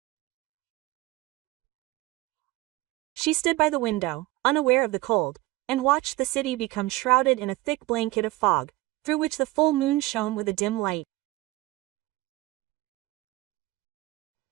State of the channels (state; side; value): quieter; left; 19.2 dB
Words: She stood by the window, unaware of the cold, and watched the city become shrouded in a thick blanket of fog, through which the full moon shone with a dim light.